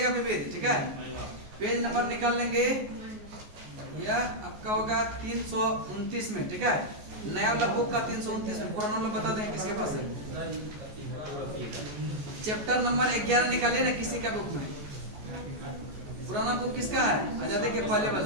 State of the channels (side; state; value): left; late; 14 ms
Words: विविध, ठीक है। पेज नंबर निकाल लेंगे, यह आपका होगा 329 में, ठीक है। नया वाला बुक का 329 में, पुराना वाला बता देंगे किसके पास है। चैप्टर नंबर 11 निकालिए ना किसी का बुक में। पुराना बुक किसका है, आजादी के पहले